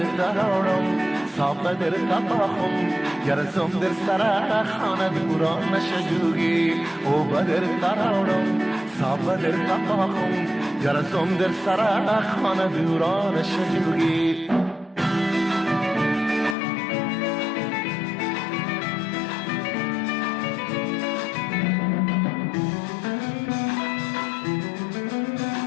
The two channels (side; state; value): right; drops out; at 16.6 s